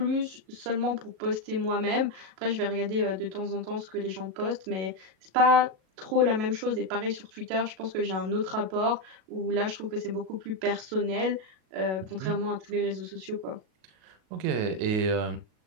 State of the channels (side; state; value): left; late; 37 ms